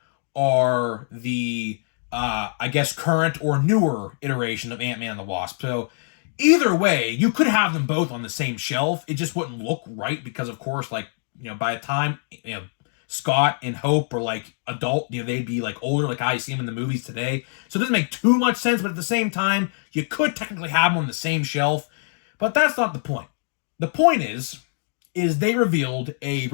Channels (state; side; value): silent; right; 63 dB below the other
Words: are the, I guess, current or newer iteration of Ant-Man and the Wasp. So, either way, you could have them both on the same shelf. It just wouldn't look right because, of course, by the time, Scott and Hope are adult, they'd be older, like I see them in the movies today. So it doesn't make too much sense, but at the same time, you could technically have them on the same shelf. But that's not the point. The point is they revealed a